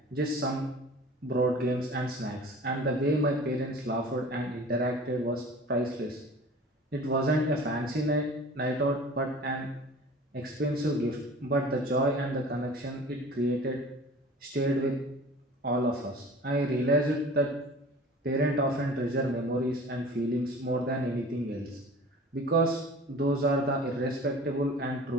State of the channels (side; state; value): both; normal; correlation 0.43